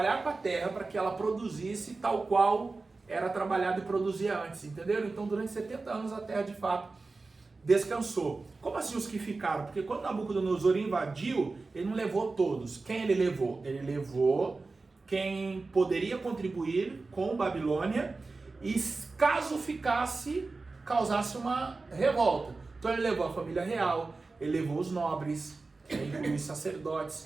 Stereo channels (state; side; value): quieter; left; 3.7 dB